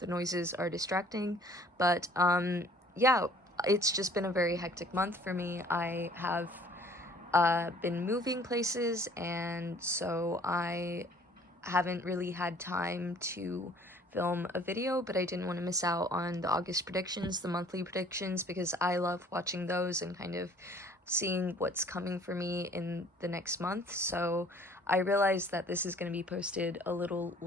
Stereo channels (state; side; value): normal; both; correlation 0.54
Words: noises are distracting, but yeah, it's just been a very hectic month for me. I have been moving places, and so I haven't really had time to film a video, but I didn't want to miss out on the August predictions, the monthly predictions, because I love watching those and kind of seeing what's coming for me in the next month. So I realized that this is going to be posted a little